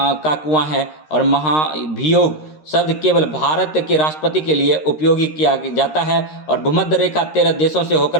है। और महाभियोग शब्द केवल भारत के राष्ट्रपति के लिए उपयोगी किया जाता है। और भूमध्य रेखा 13 देशों से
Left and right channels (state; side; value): late; right; 13 ms